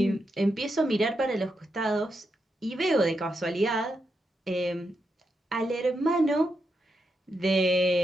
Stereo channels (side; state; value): both; normal; correlation 0.84